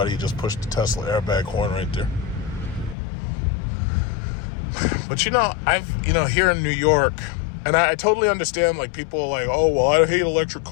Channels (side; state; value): right; drops out; at 3.0 s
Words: you just push the Tesla airbag horn right there. But here in New York, and I totally understand, like, people are like, oh, well, I hate electric